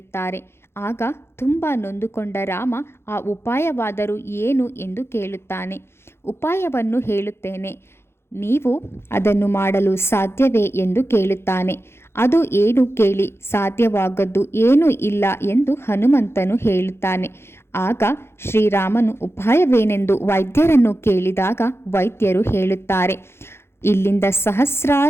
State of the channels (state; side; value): late; right; 0.12 ms